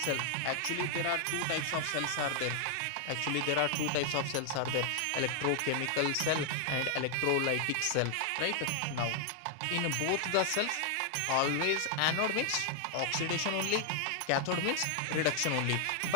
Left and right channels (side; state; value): both; different; correlation 0.00